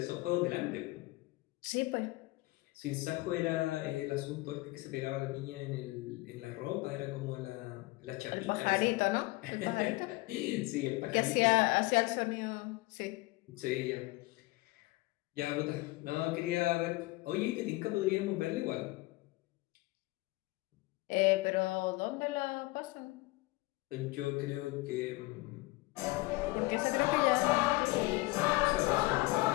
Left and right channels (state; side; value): quieter; right; 21.6 dB